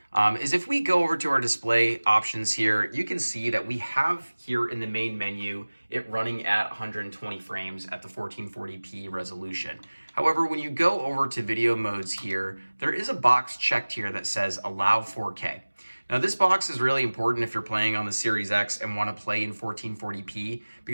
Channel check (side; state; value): both; inverted; correlation -1.00